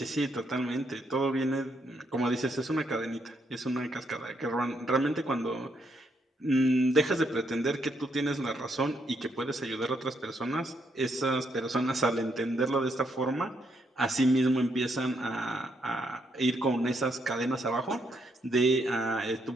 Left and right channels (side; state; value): both; normal; correlation 0.75